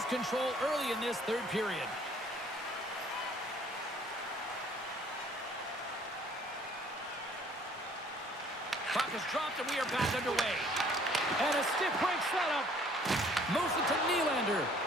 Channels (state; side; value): normal; both; correlation 0.58